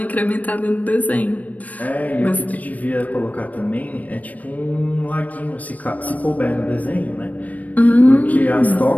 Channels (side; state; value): right; late; 0.073 ms